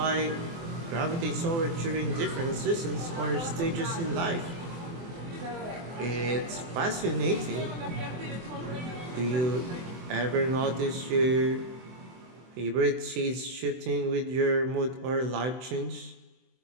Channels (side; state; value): left; late; 24 ms